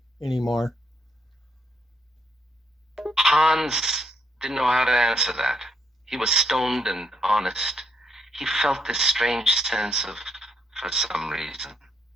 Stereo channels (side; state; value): both; normal; correlation 0.74